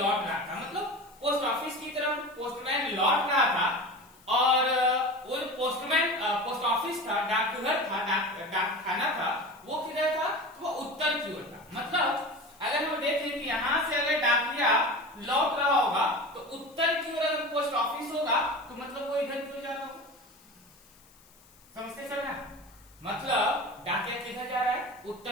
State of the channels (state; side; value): noise; left; hiss, 27 dB below the sound